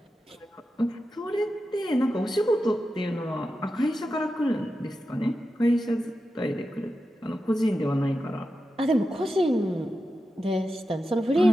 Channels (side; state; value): both; normal; correlation 0.91